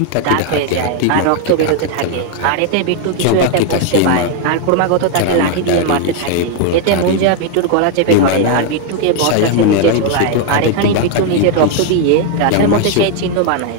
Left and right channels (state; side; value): different; both; correlation 0.01